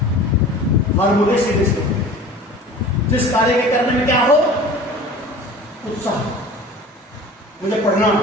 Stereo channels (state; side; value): normal; both; correlation 0.41